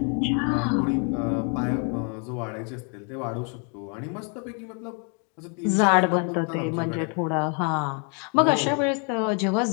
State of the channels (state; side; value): quieter; right; 38.2 dB